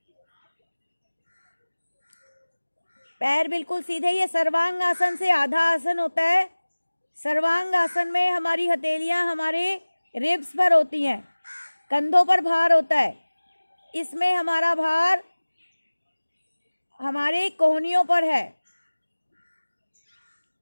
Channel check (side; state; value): both; inverted; correlation -1.00